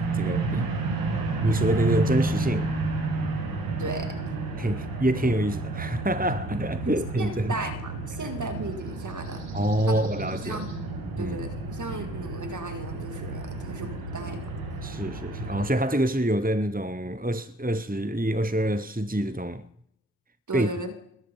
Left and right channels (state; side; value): normal; both; correlation 0.58